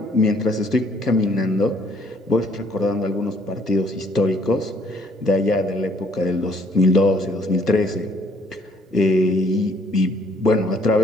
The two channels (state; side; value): normal; both; correlation 0.63